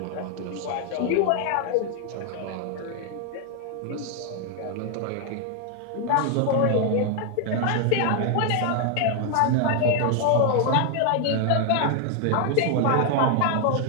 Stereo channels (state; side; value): different; both; correlation 0.00